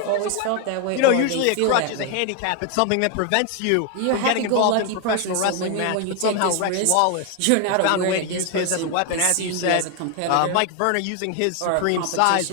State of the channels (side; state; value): both; different; correlation 0.01